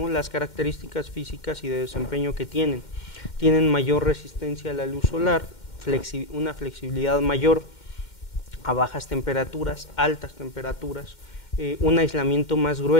Las características físicas y de desempeño que tienen mayor resistencia a la luz solar, una flexibilidad mayor a bajas temperaturas, altas temperaturas, un aislamiento más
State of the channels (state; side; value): late; right; 2.1 ms